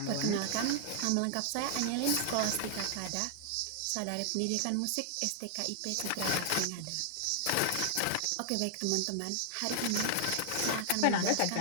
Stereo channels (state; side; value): different; both; correlation 0.00